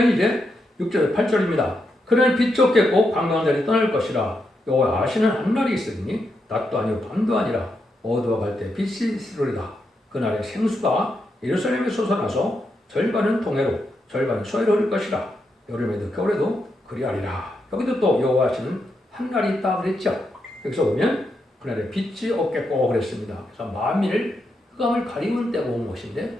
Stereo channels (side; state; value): both; normal; correlation 0.83